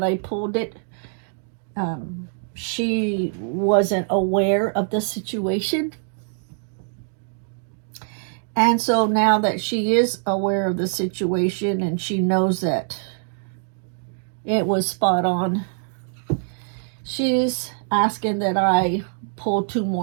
I pulled it. She wasn't aware of the situation. And so now that she is aware of the situation and she knows that it was spot on, she's asking that I pull 2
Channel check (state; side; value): silent; left; digital silence